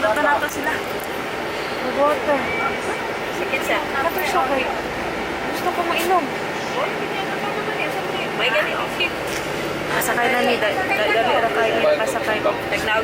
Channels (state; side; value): identical; both; correlation 1.00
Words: nato sila. Water. Sige sa. Nato siya kay. Gusto ko mainom. May ganito. Kasakay na ni, dali ra kayo niya kasakay ko.